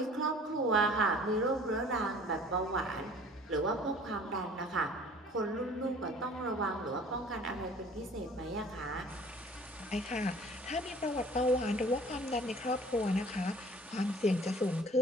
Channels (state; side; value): normal; both; correlation 0.50